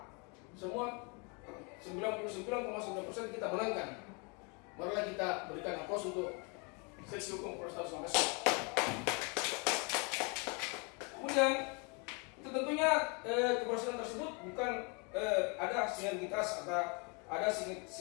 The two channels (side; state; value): right; quieter; 33.0 dB